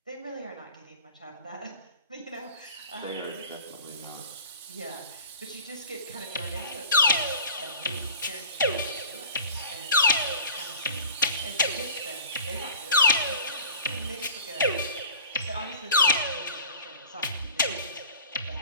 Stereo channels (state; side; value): inverted; both; correlation -0.41